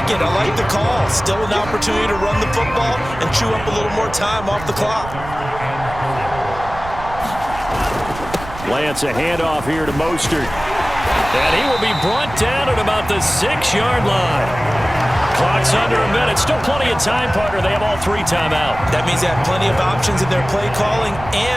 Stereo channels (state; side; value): noise; right; rumble, 13 dB below the sound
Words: it. I like the call. Still an opportunity to run the football and chew up a little more time off the clock. Lance, a handoff here to Mostert. And he will be brought down at about the 6-yard line. Clock's under a minute. Still plenty of time, partner. They have all 3 timeout. That means they have plenty of options in their play calling